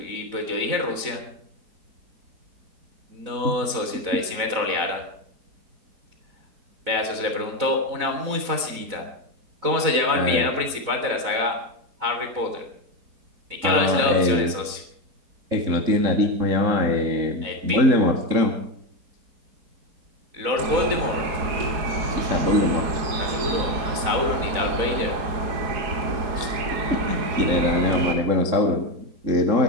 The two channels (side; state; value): left; late; 4.0 ms